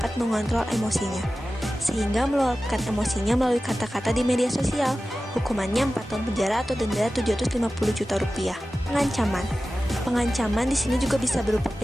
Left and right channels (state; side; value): normal; both; correlation 0.95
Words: mengontrol emosinya, sehingga meluapkan emosinya melalui kata-kata di media sosial. Hukumannya 4 tahun penjara atau denda 750 juta rupiah. Pengancaman. Pengancaman di sini juga bisa berupa